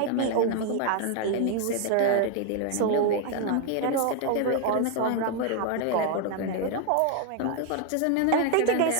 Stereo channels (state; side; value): different; both; correlation 0.00